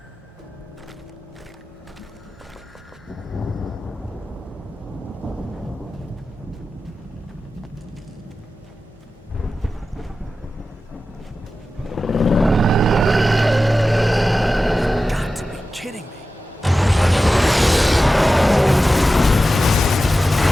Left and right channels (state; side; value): normal; both; correlation 0.93